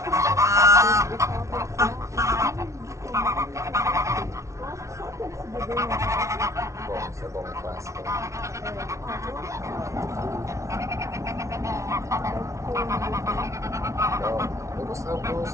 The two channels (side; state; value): left; late; 0.14 ms